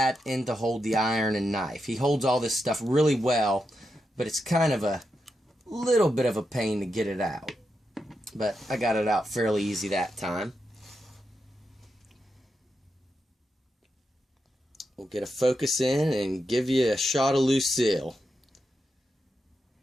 and to hold the iron and knife. He holds all this stuff really well, but it's kind of a little bit of a pain to get it out. But I got it out fairly easy that time. We'll get a focus in and give you a shot of Lucille.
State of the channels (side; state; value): both; normal; correlation 0.86